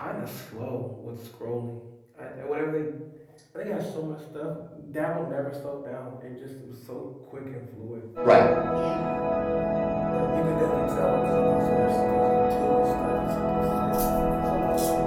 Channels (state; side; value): identical; both; correlation 1.00